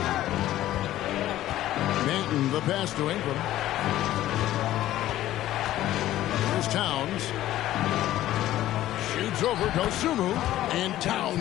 Banton the pass to Ingram. Here's Towns. Shoots over Dosunmu, and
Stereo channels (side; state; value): right; quieter; 14.0 dB